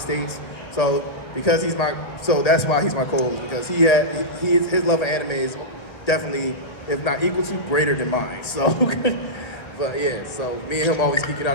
So that's why he's my co-host, because his love of anime is definitely, if not equal to, greater than mine. So, but yeah, so me and him always geek it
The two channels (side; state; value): right; late; 1.3 ms